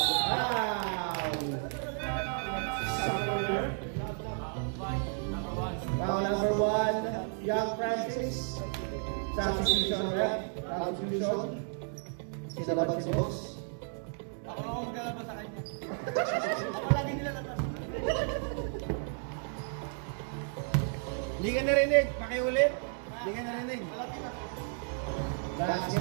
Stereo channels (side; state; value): left; silent; 56 dB below the other